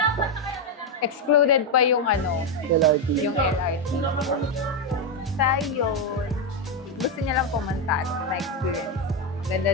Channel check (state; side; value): normal; both; correlation 0.05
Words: Excluded pa yung LRT. yung LRT. Sa yun, gusto niya lang pumunta na experience.